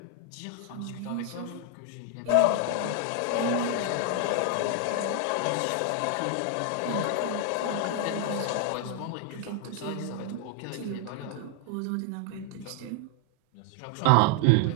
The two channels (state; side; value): different; both; correlation 0.00